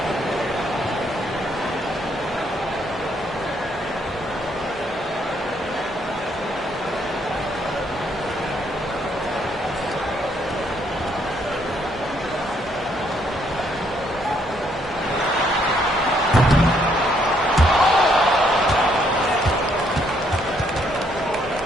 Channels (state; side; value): normal; both; correlation 0.70